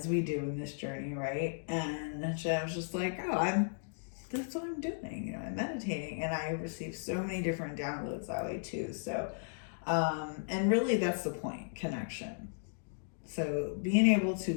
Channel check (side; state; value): right; silent; digital silence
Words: we do in this journey, right? And I was just like, that's what I'm doing. I'm meditating, and I receive so many different downloads that way too. So, and really that's the point, connection. So being able